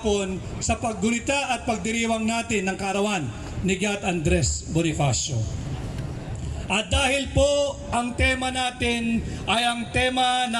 sa paggunita at pagdiriwang natin ng kaarawan ni Gat Andres Bonifacio. At dahil po ang tema natin ay ang tema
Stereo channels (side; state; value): both; identical; correlation 1.00